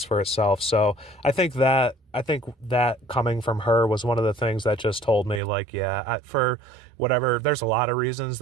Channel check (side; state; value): left; drops out; at 5.4 s